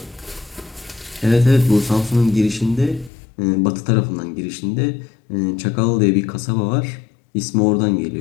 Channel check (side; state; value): right; drops out; at 3.1 s